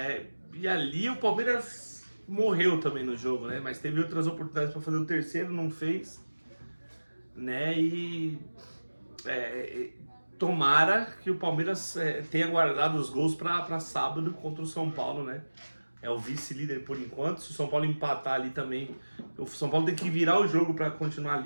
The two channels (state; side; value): inverted; both; correlation -1.00